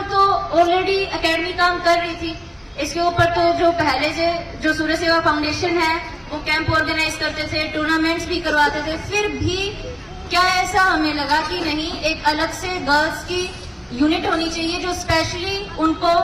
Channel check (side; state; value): both; identical; correlation 1.00